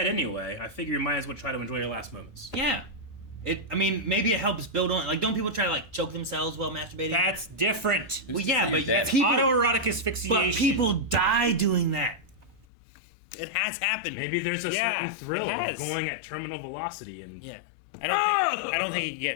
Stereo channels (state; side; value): drops out; right; at 12.7 s